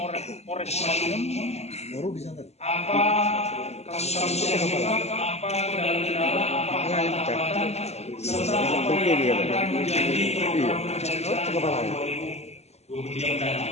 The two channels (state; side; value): late; right; 0.31 ms